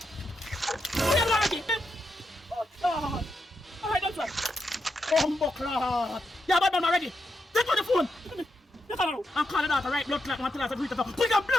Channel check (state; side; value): normal; both; correlation 0.84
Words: oh God. Alright, that's right. Bumbo clot. Yeah, badman already. Take on the phone. Yes, I know. I'm calling out the right blood clot. I'm telling us to put the